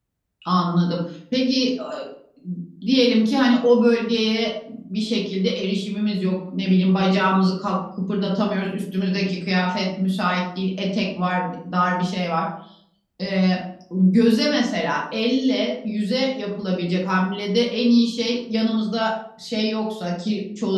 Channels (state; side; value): identical; both; correlation 1.00